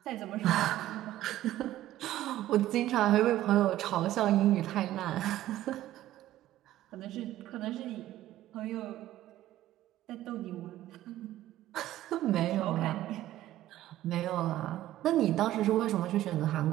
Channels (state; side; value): quieter; left; 14.1 dB